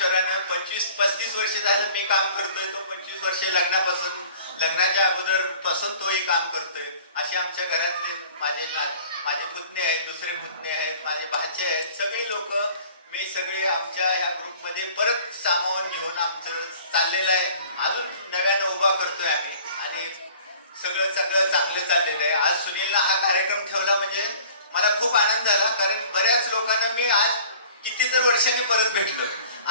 25-35 वर्ष झालं मी काम करतोय, तो 25 वर्षे लग्नाच्या अगोदर पासून तोही काम करतोय. असे आमच्या घरातले माझे पुतणे आहेत, दुसरे पुतणे आहेत, माझे भाचे आहेत, सगळे लोक मी सगळे आमच्या ह्या ग्रुपमध्ये परत सामावून घेऊन आमचं चाललेलं आहे. अजून नव्यानं उभा करतोय आम्ही आणि सगळं चांगलं चाललेलं आहे. आज सुनीलनं हा कार्यक्रम ठेवला म्हणजे मला खूप आनंद झाला, कारण बऱ्याच लोकांना मी आज कितीतर वर्षांनी परत भेटलो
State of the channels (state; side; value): inverted; both; correlation -0.49